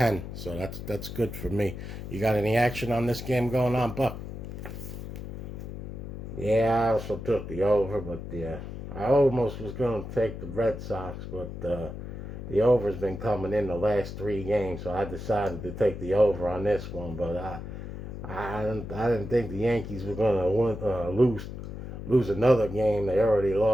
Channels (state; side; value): noise; left; hum, 9 dB below the sound